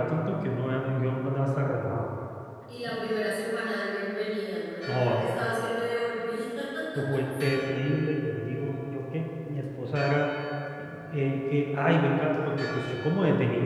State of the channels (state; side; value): identical; both; correlation 1.00